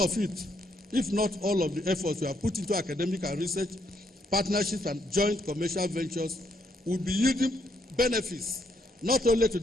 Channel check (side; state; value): both; normal; correlation 0.73